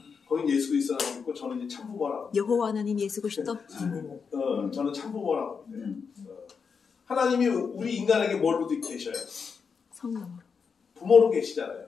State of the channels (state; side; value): quieter; right; 5.8 dB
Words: 거긴 예수 그리스도라고 있고 저는 이제 참부모라고. 여호와 하나님 예수 그리스도. 저는 참부모라고 합니다. 하나님이 우리 인간에게 뭘로 계셔요? 성령으로. 부모로 계시잖아요.